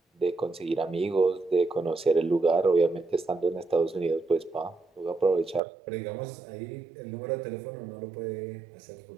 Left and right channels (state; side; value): drops out; left; at 5.6 s